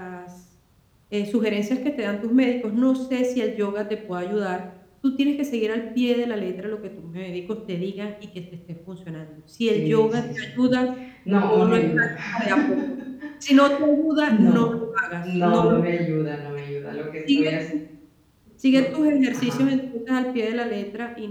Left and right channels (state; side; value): identical; both; correlation 1.00